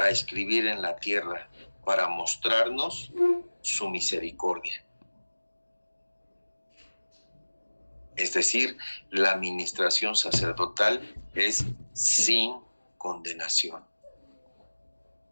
escribir en la tierra, para mostrarnos su misericordia. Es decir, la administración sacerdotal es sin condenación.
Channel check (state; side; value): inverted; both; correlation -1.00